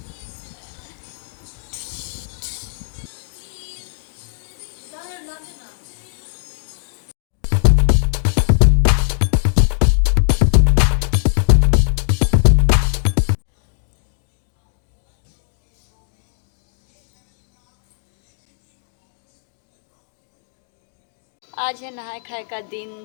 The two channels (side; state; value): right; silent; digital silence